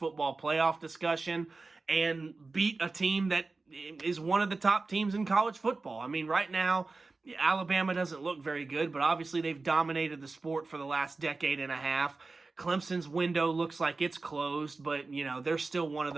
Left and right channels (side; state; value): left; quieter; 3.7 dB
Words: playoff discussion and beat a team that is one of the top teams in college football. Right now, Alabama doesn't look very good, but obviously they've dominated the sport for the last decade and a half. Clemson's window looks like it's closed, but, they're still one of